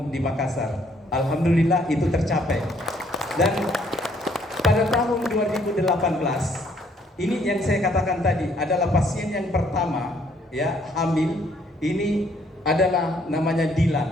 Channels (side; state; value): both; normal; correlation 0.66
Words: di Makassar. Alhamdulillah itu tercapai. Dan pada tahun 2018 ini yang saya katakan tadi adalah pasien yang pertama, ya, hamil. Ini adalah namanya